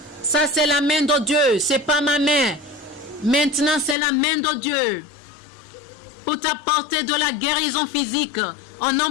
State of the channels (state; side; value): drops out; right; at 4.0 s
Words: Ça, c'est la main de Dieu. C'est pas ma main. Maintenant, c'est la main de Dieu. Pour t'apporter de la guérison physique. Au